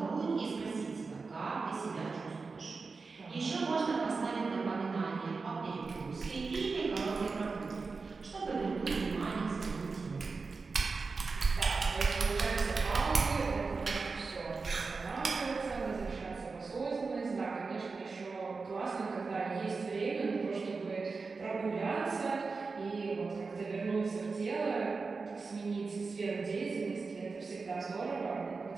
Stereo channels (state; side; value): quieter; left; 4.4 dB